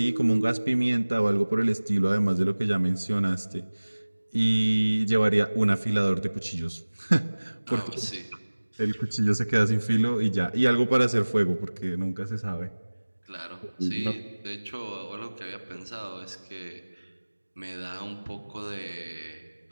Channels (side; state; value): both; inverted; correlation -1.00